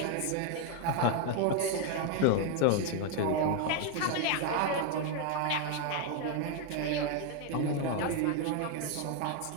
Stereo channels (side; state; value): both; different; correlation 0.01